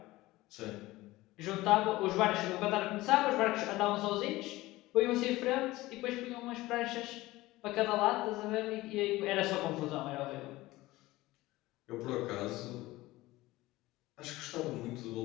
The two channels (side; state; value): right; quieter; 18.5 dB